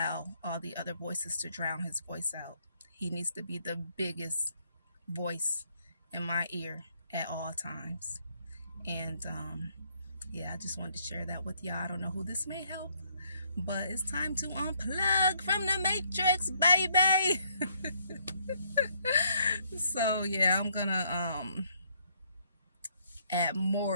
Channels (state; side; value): inverted; both; correlation -0.69